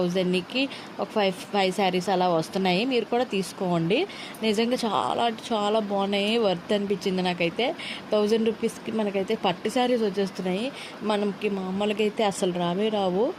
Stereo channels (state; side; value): identical; both; correlation 1.00